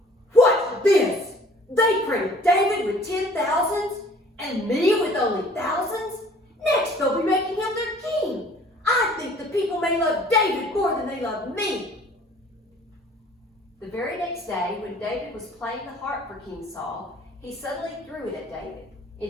What's this? They crowned David with 10,000s, and me with only thousands? Next they'll be making him their king. I think the people may love David more than they love me. The very next day, when David was playing the harp for King Saul, he suddenly threw it at David,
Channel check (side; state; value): both; normal; correlation 0.53